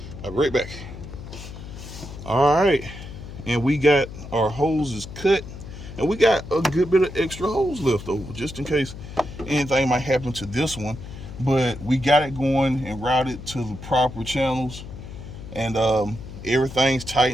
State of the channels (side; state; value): left; noise; hum, 12 dB below the sound